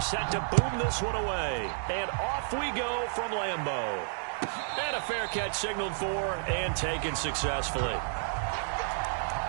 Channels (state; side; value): silent; left; digital silence